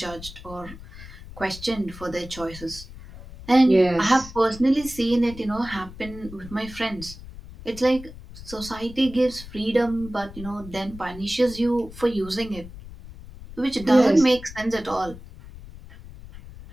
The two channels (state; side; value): noise; left; rumble, 16 dB below the sound